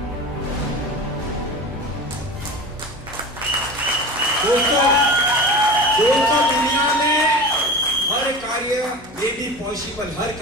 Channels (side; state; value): both; normal; correlation 0.32